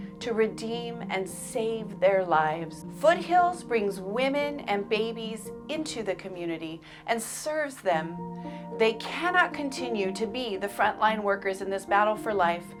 to redeem and save their lives. Foothills brings women and babies into the community and serves them. They cannot continue to be the frontline workers in this battle for life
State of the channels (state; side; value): identical; both; correlation 1.00